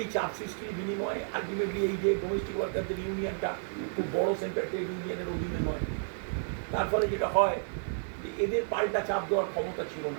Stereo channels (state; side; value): silent; left; digital silence